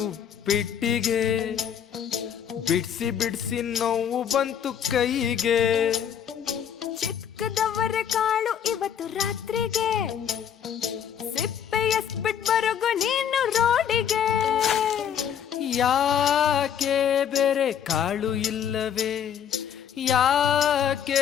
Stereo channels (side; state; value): right; quieter; 8.7 dB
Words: ಉಪ್ಪಿಟ್ಟಿಗೆ, ಬಿಡ್ಸಿ ಬಿಡ್ಸಿ ನೋವು ಬಂತು ಕೈಗೆ. ಚಿಕ್ಕದವರ ಕಾಳು ಇವತ್ತು ರಾತ್ರಿಗೆ, ಸಿಪ್ಪೆ ಎಸ್ಬಿಟ್ ಬರಗು ನೀನು ರೋಡಿಗೆ. ಯಾಕೆ ಬೇರೆ ಕಾಳು ಇಲ್ಲವೇ,